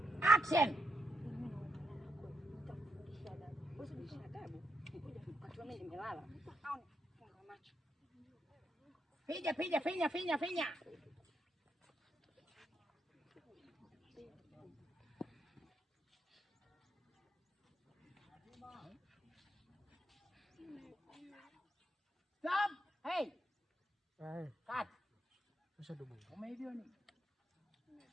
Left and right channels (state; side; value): normal; both; correlation 0.82